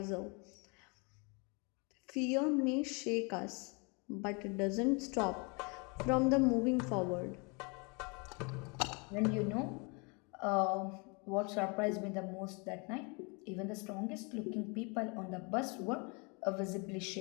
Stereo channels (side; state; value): right; quieter; 31.9 dB